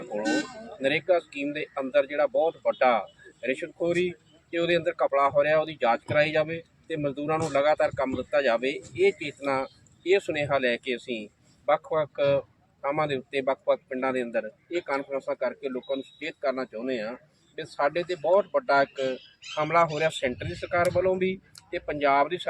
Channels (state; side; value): identical; both; correlation 1.00